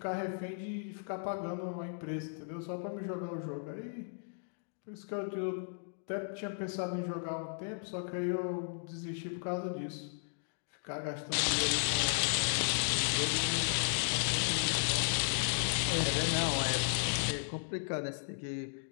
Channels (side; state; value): right; silent; digital silence